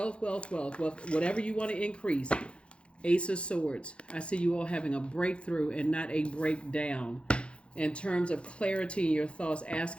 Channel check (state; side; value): late; right; 0.058 ms